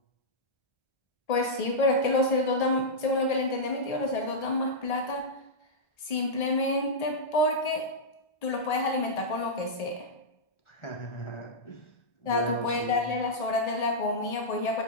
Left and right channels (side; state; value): right; late; 1.8 ms